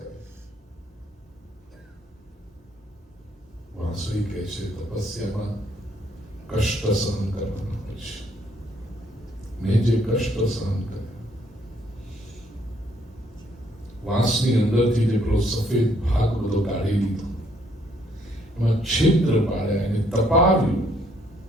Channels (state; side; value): normal; both; correlation 0.68